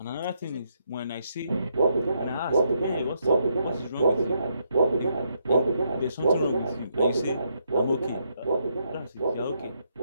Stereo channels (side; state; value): both; inverted; correlation -0.77